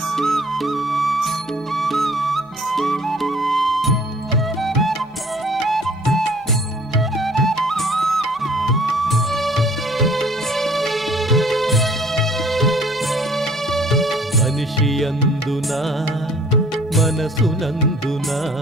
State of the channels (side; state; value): both; normal; correlation 0.54